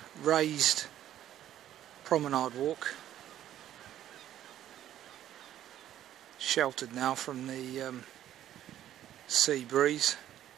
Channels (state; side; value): quieter; left; 11.9 dB